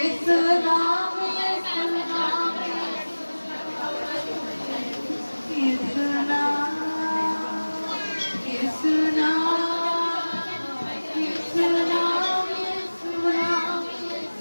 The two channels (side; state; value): both; inverted; correlation -1.00